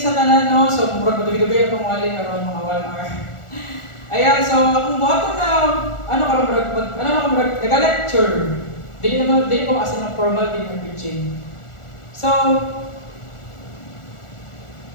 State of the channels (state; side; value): late; right; 1.4 ms